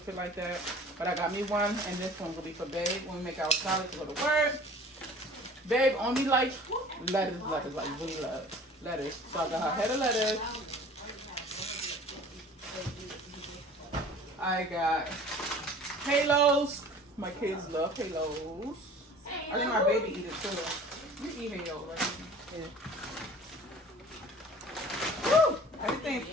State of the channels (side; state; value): both; normal; correlation 0.46